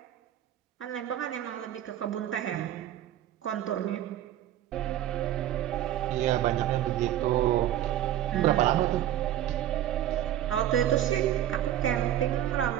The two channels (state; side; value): quieter; left; 12.0 dB